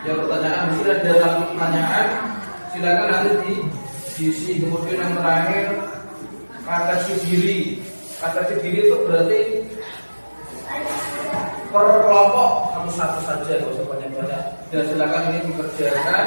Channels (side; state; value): both; inverted; correlation -1.00